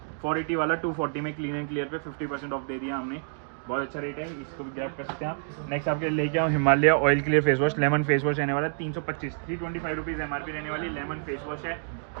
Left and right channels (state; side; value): silent; left; digital silence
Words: 480 वाला 240 में क्लीन एंड क्लियर पे 50% ऑफ दे दिया हमने, बहुत अच्छा रेट है, इसको भी ग्रैब कर सकते हैं आप। नेक्स्ट आपके लेके आऊँ Himalaya oil clear face wash, lemon face wash रहने वाला है, 325, 325 रुपीज़ MRP रहने वाली लेमन फेस वॉश है।